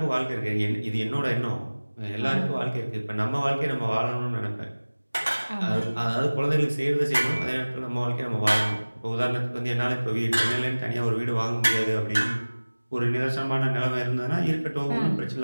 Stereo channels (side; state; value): both; inverted; correlation -1.00